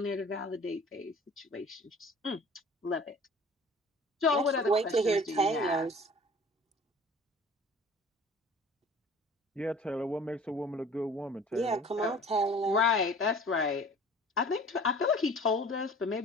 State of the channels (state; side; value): normal; both; correlation 0.46